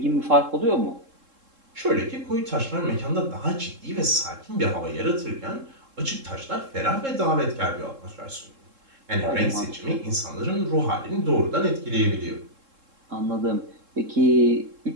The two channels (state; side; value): late; left; 3.7 ms